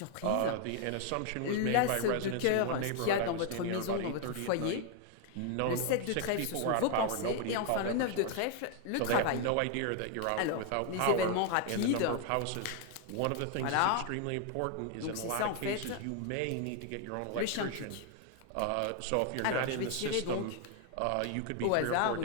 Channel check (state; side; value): different; both; correlation 0.00